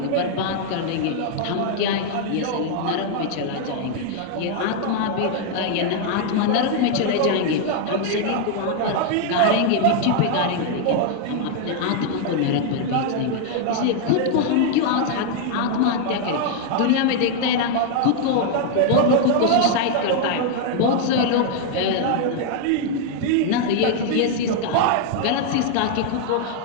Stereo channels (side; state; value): both; different; correlation 0.00